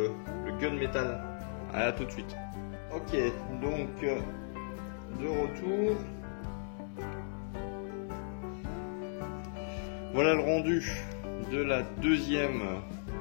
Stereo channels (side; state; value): right; silent; digital silence